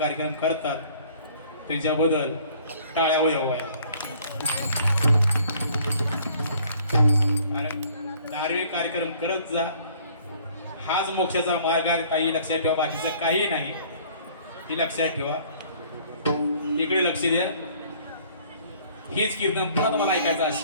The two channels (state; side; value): inverted; both; correlation -0.56